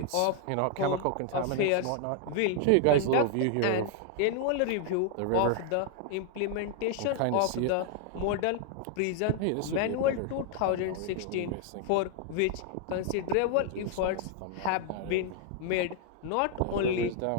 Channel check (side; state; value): both; different; correlation 0.00